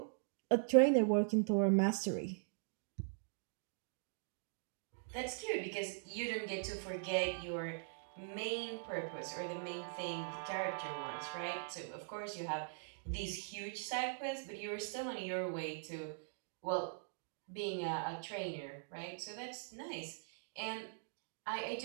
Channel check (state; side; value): silent; left; digital silence